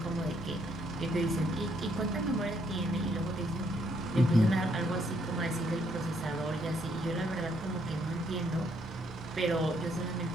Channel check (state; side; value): normal; both; correlation 0.71